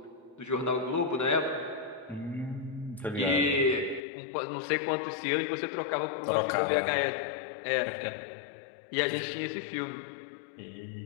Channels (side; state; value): right; drops out; at 4.0 s